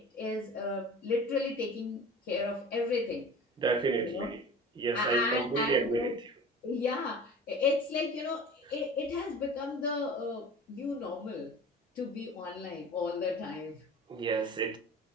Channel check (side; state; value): both; normal; correlation 0.39